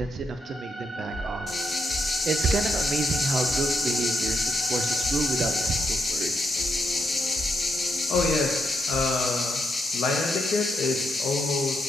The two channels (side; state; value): both; normal; correlation 0.80